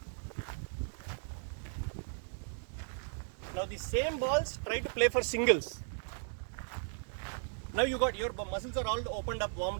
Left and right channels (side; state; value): left; silent; digital silence